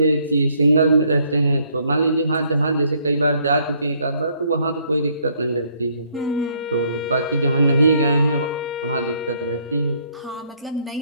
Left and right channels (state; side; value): inverted; both; correlation -0.67